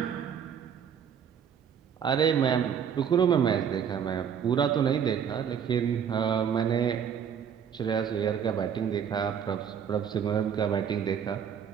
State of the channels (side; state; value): left; quieter; 7.9 dB